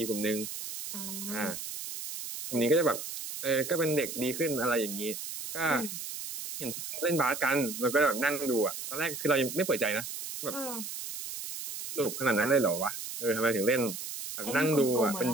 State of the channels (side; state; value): right; noise; hiss, 7 dB below the sound